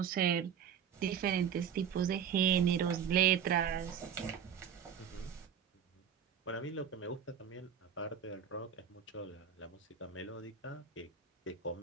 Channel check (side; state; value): left; quieter; 8.1 dB